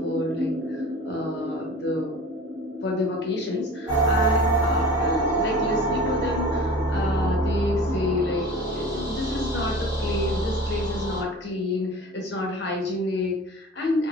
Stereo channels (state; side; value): normal; both; correlation 0.40